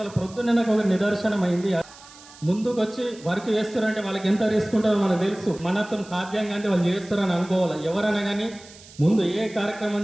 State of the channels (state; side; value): noise; right; hiss, 21 dB below the sound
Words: పొద్దున్నే నాకు ఒక నిదర్శనం అయింది. ముందుకు వచ్చి వర్క్ చేస్తారంటే వాళ్ళకి ఎంత రిస్క్ ఉంటుందో మనకు తెలుసు. మనతో సాధ్యంగా అంటే వాళ్ళు చేస్తారని అనుకోవాలి. ఎవరైనా కానీ ముందు ఏ కార్యక్రమం